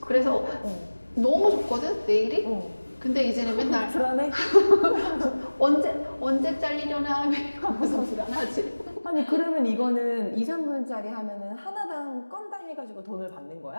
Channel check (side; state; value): both; inverted; correlation -1.00